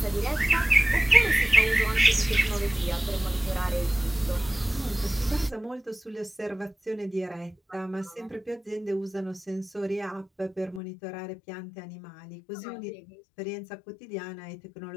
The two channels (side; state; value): right; drops out; at 10.8 s